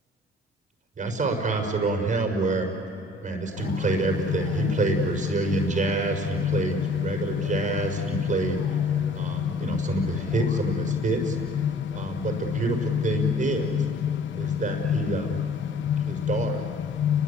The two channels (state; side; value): normal; both; correlation 0.53